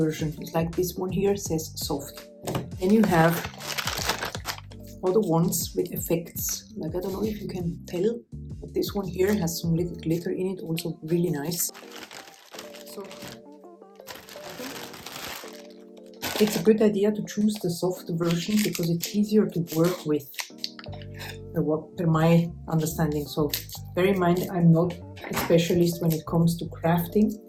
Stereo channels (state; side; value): identical; both; correlation 1.00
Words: It's like this one here says soft. Then you have other ones with effects. Like, I don't know if you can tell, but this one here has some little glitter in it, also really nice. So it's a good idea to choose the soft version because it's easier to work with, per my understanding. So bear in mind, I'm not a specialist when it comes to crafting.